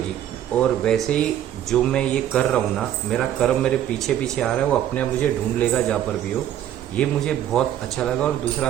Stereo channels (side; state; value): left; quieter; 11.3 dB